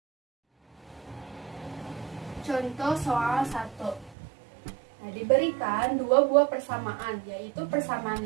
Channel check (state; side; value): drops out; left; at 4.2 s